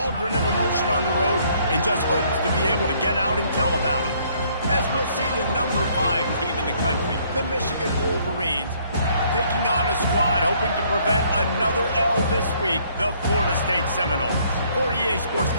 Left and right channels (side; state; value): both; inverted; correlation -0.64